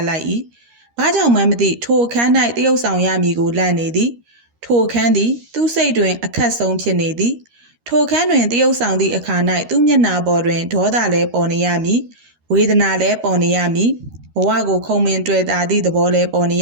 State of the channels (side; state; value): left; late; 13 ms